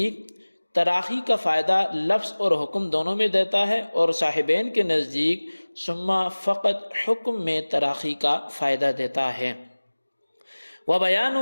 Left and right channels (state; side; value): inverted; both; correlation -1.00